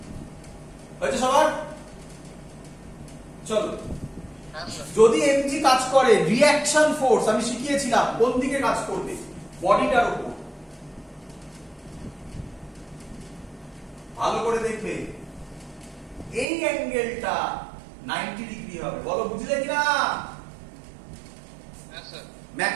হয়েছে সবার? চলো যদি এমজি কাজ করে, রিঅ্যাকশন ফোর্স আমি শিখিয়েছিলাম কোন দিকে কাজ করবে? বডিটার উপর। ভালো করে দেখবে এই অ্যাঙ্গেলটা 90 ডিগ্রি হবে। বলো বুঝলে কিনা? হ্যাঁ স্যার।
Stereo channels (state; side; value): drops out; left; at 16.4 s